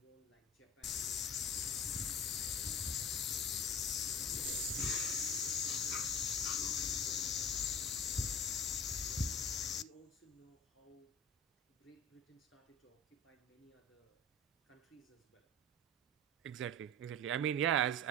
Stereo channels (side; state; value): both; normal; correlation 0.37